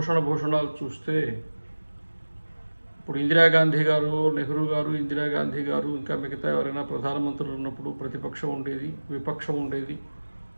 భూషణాలు చూస్తే ఇప్పుడు ఇందిరాగాంధీ గారు, నెహ్రూ గారు, ఇందిరాగాంధీ గారు ఇంకా మిగతా ఎవరైనా ప్రధానమంత్రులు ఉన్నప్పుడు ప్రతిపక్షం ఉండేది, విపక్షం ఉండేది,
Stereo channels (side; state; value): both; inverted; correlation -1.00